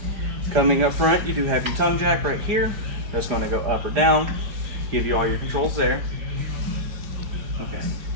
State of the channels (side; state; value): left; late; 4.8 ms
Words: Coming up front, you do have your tongue jack right here. That's going to go up or down, give you all your controls there. Okay.